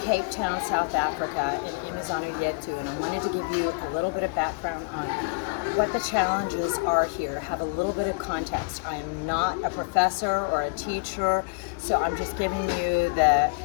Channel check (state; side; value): quieter; right; 32.1 dB